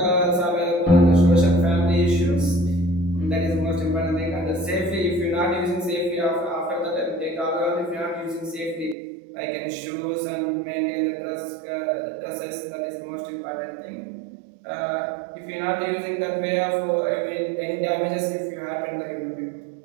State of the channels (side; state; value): left; drops out; at 9.0 s